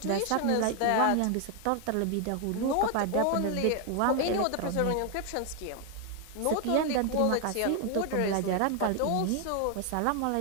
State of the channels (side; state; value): both; different; correlation 0.00